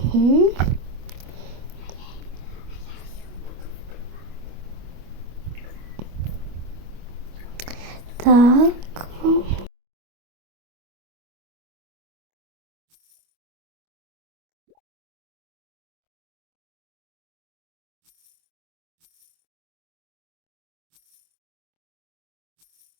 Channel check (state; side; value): late; left; 25 ms